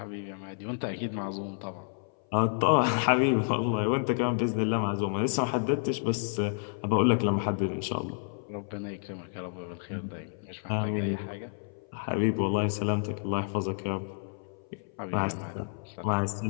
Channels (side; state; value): right; silent; 56 dB below the other